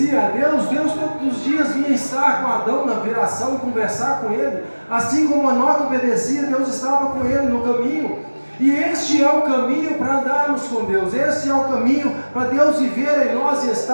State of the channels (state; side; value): inverted; both; correlation -1.00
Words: a Deus, Deus todos os dias vinha estar com Adão na viração, conversar com ele. Assim como Enoque obedecia, Deus estava com ele no caminho. E este é o caminho para andarmos com Deus. Este é o caminho para Deus viver em nós e